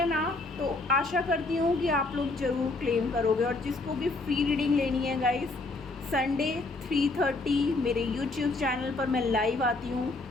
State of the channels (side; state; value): right; quieter; 3.2 dB